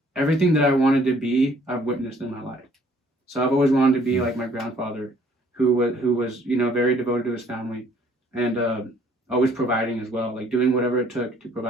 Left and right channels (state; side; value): normal; both; correlation 0.60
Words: Everything that I wanted to be, I've witnessed in my life. So I've always wanted to be like my grandfather, who was very devoted to his family, and always providing as well, like doing whatever it took to